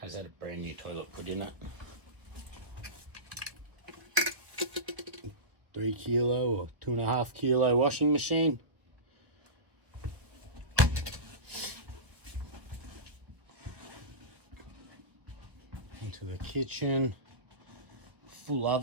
had a brand new toilet put in it. 3 kilo or 2.5 kilo washing machine. Into the kitchen, full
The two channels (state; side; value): late; left; 1.2 ms